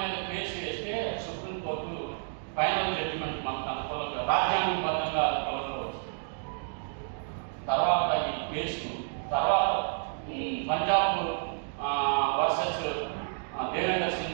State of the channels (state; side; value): silent; left; digital silence